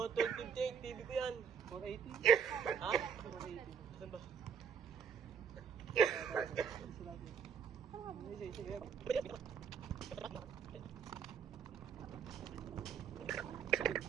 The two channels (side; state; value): left; quieter; 7.2 dB